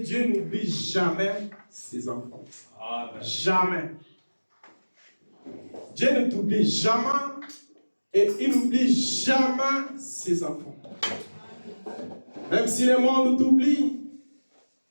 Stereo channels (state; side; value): inverted; both; correlation -1.00